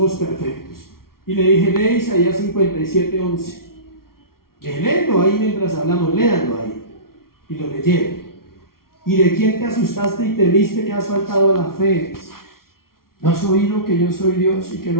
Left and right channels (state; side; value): late; right; 0.93 ms